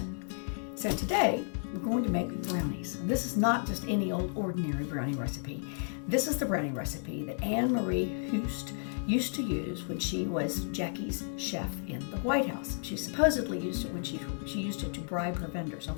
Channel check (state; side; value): silent; right; 56 dB below the other